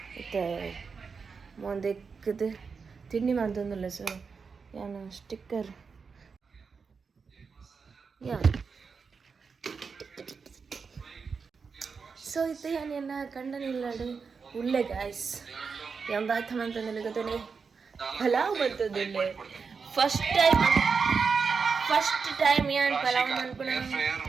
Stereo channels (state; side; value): quieter; left; 5.3 dB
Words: ಮತ್ತೆ ಮೊಂದೆಕ್ಕದು ತಿಂಡಿ ಮಾಡ್ತಂದಲ್ಲ ಸೊ ಏನು ಸ್ಟಿಕ್ಕರ್ ಯಾ ಸೊ ಇದು ಏನೆಲ್ಲ ಕಂಡನಿಲ್ಲಾಡು ಉಳ್ಳೆ ಗಾಯ್ಸ್ ಎಂಬಾಯ್ತು ಅಂತಂದ್ರೆ ಗೊತ್ತೇ ಪಲಾವ್ ಬರ್ತದಿಲ್ಲ ಫಸ್ಟ್ ಟೈಮ್ ಏನು ಪಲಾವ್ ಮಾಡ್ಕೊಂಡು